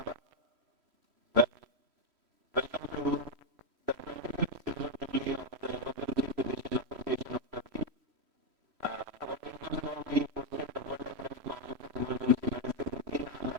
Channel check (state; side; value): late; left; 3.1 ms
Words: Well, welcome to the 25th Silver Jubilee of the Emergency Physician Association of Turkey. Our purpose now being hosted the World Economic Congress of Emergency Medicine in